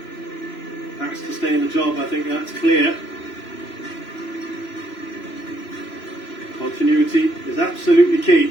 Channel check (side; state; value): right; late; 3.0 ms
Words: has to stay in the job, I think that's clear. Continuity is absolutely